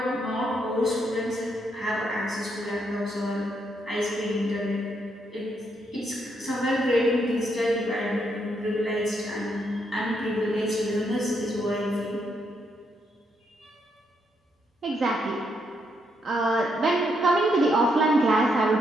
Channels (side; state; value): both; normal; correlation 0.77